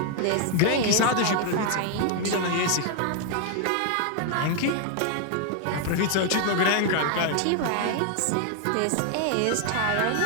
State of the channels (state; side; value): different; both; correlation 0.00